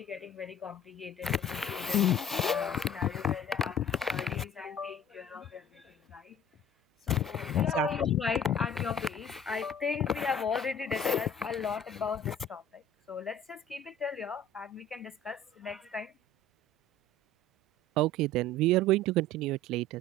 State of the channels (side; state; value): both; normal; correlation 0.46